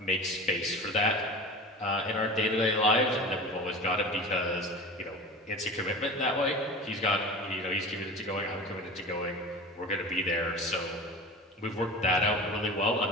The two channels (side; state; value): both; normal; correlation 0.35